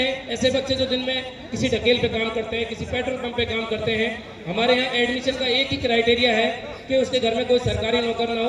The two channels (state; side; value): identical; both; correlation 1.00